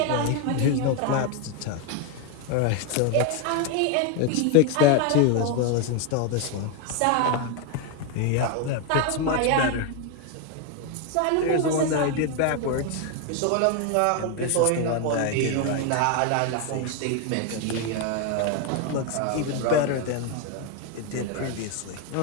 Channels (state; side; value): different; both; correlation 0.01